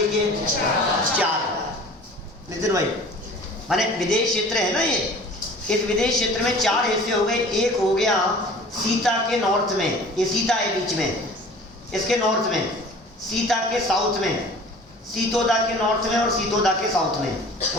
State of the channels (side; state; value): both; normal; correlation 0.45